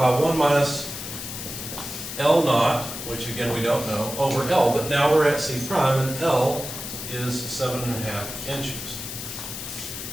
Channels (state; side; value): noise; left; hiss, 8 dB below the sound